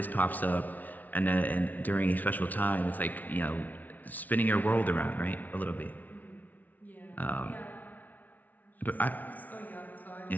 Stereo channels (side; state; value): right; late; 0.078 ms